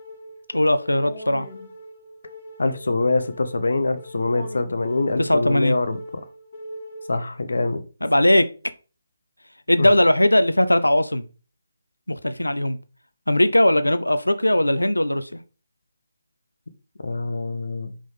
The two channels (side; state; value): both; inverted; correlation -0.97